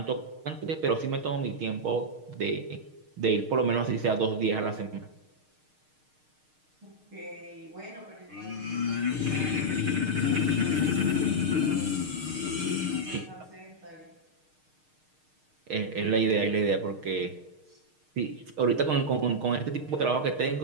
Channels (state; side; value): late; left; 6.5 ms